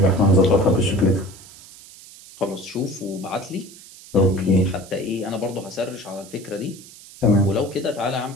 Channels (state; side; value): noise; right; hiss, 20 dB below the sound